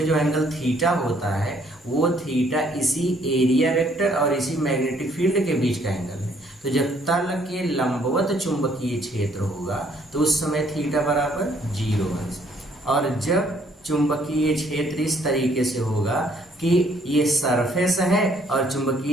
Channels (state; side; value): normal; both; correlation 0.64